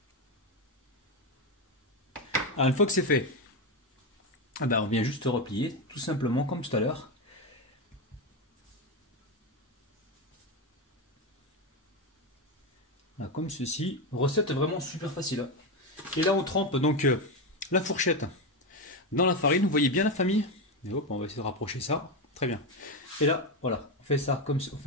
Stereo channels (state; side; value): normal; both; correlation 0.11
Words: Alors une fois que c'est fait, on vient juste replier, tout simplement comme tout à l'heure. Comme ceci, recette vraiment super facile. Hein. Et là on trempe donc la fourchette dans la farine, vous voyez bien la famille. Et hop, on va essayer de rapprocher ça. Très bien. Et là, voilà, on